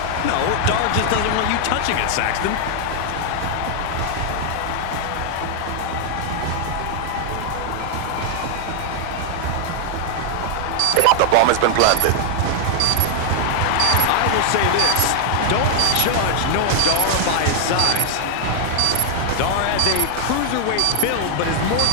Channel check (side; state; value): both; different; correlation 0.00